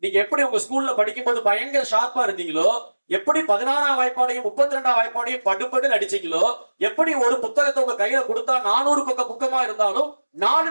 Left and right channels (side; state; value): both; inverted; correlation -1.00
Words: நீங்க எப்படி உங்க ஸ்கூல்ல படிக்கும் போது பயங்கர ஷார்ப்பா இருந்தீங்களோ, எப்படி 16ஆம் வாய்ப்பாடையும் 32ஆம் வாய்ப்பாடையும் படுபடுன்னு அடிச்சீங்களோ, எப்படி ஒரு புத்தகத்தை உங்க கையில கொடுத்தா 400 பக்க புக்கமா இருந்தாலும்